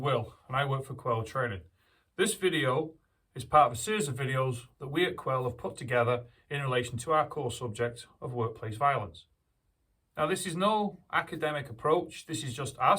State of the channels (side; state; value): both; identical; correlation 1.00